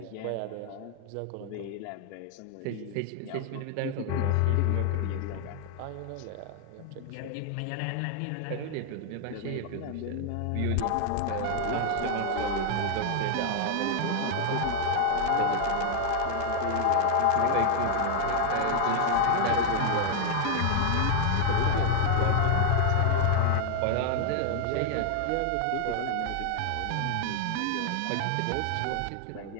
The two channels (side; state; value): both; different; correlation 0.00